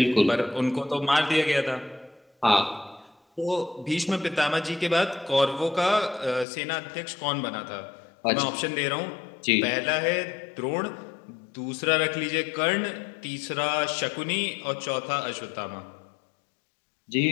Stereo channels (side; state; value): right; drops out; at 6.5 s